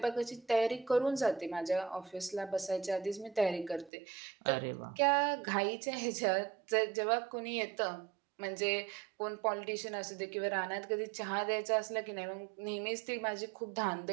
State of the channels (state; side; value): drops out; left; at 3.9 s